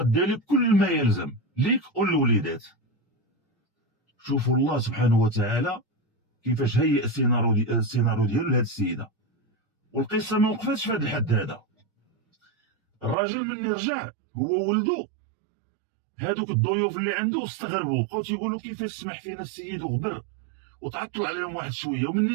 لك كل ما يلزم ليك وللوليدات. شوفوا الله سبحانه وتعالى كيفاش هيئ السيناريو ديالو لهاد السيده. والقصه ما وقفتش في هذا الحد هذا. الراجل مني رجع هو ولدو، هادوك الضيوف اللي عنده استغربوا، بقاو تيقولوا كيفاش سمح فينا السيد وغبر وتعطل عليهم واحد شويه. ومني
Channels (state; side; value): drops out; left; at 13.2 s